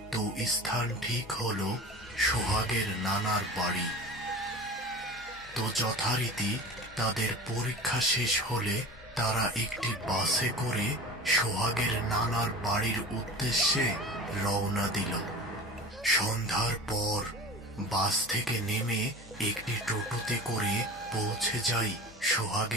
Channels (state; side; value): normal; both; correlation 0.35